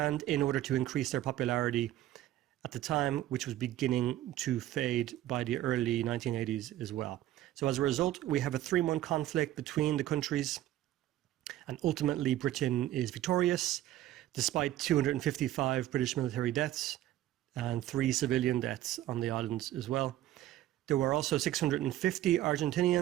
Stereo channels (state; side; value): quieter; left; 13.9 dB